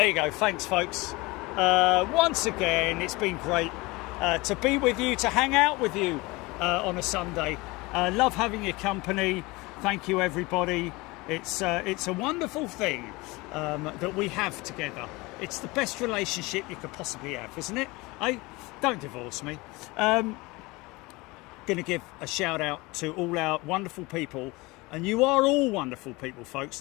you go. Thanks, folks. Once again, it's been great to be with you, to hang out with you on a Sunday. Love having your company. Thank you, everybody. It's a wonderful thing that we have together. It's the best relationship you could possibly have, isn't it? Don't divorce me. Going to give a shout out to all our wonderful people, and you are all wonderful people, folks.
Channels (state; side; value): quieter; right; 23.2 dB